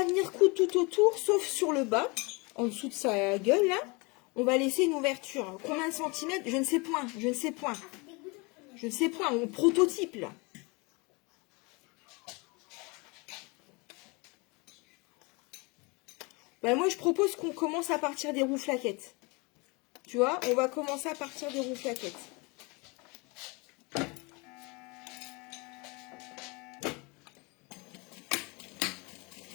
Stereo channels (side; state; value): right; quieter; 28.2 dB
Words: venir coudre tout autour, sauf sur le bas, en dessous de sa gueule, là. On va laisser une ouverture. Combien de centimètres? Je ne sais point, je ne sais point. Je ne sais point, on prototype, là. Ben moi, je propose qu'on commence à partir des rouflaquettes. Tu vois, on va commencer à partir des rouflaquettes.